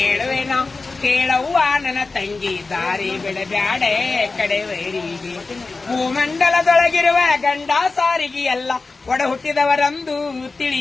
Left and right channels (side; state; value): right; quieter; 3.8 dB